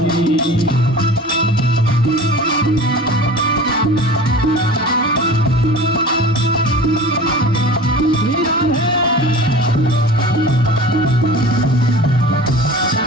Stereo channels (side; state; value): both; normal; correlation 0.39